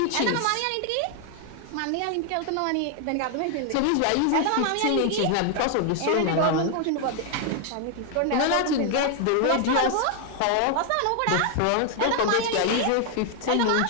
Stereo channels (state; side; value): different; both; correlation 0.00